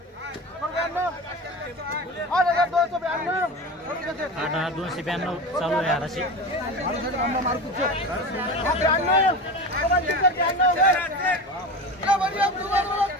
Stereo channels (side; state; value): both; normal; correlation 0.28